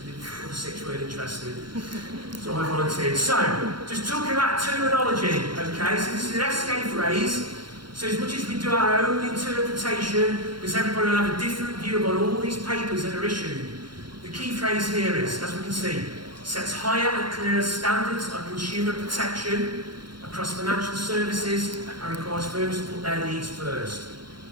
the other six weren't interested. So I volunteered. So, just talking about terminology, okay? So this is an FSExperience phrase. So as much as we do our own interpretation, because everybody will have a different view on all these papers that are issued, the key phrase here is, as we can see, sets higher and clearer standards of consumer protection across financial services and requires firms to put their needs first.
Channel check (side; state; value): left; late; 0.72 ms